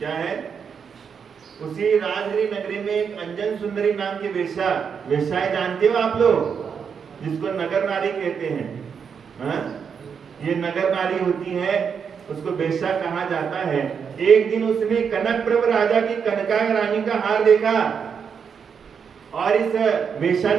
है, उसी राजगृह नगरी में एक अंजन सुंदरी नाम की वेश्याएं जानते हो आप लोग, जिसको नगर नारी कहते हैं। ये नगर नारी होती है, उसको वेश्या कहा जाता है। एक दिन उसने कनक प्रभ राजा की कनका रानी का हार देखा, और इस वेश्या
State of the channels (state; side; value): quieter; left; 6.7 dB